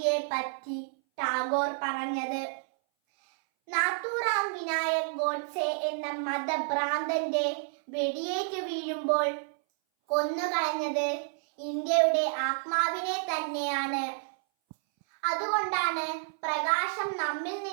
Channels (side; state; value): left; silent; 58 dB below the other